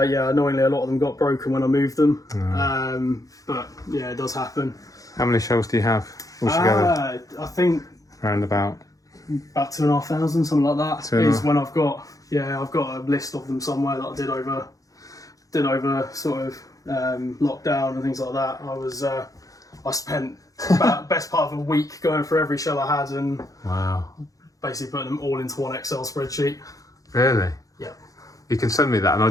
Annoyingly, a lot of them got broken when I moved them. But yeah, it does happen. How many shells do you have altogether? I think around about 2,500, something like that. Is when I've got a list of them somewhere that I did over sort of lockdown and things like that. I spent about best part of a week going through every shell I had and basically putting them all into one Excel spreadsheet. Really? Yeah. You can send me that, and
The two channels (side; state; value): right; late; 0.17 ms